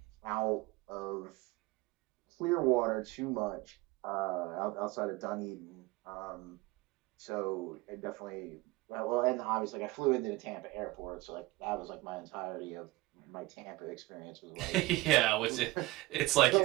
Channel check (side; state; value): left; quieter; 20.7 dB